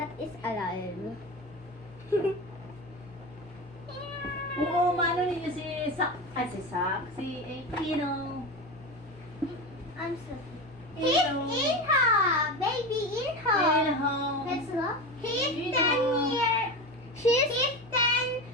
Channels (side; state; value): both; normal; correlation 0.23